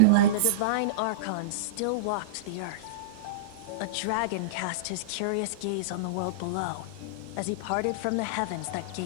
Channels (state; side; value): different; both; correlation -0.04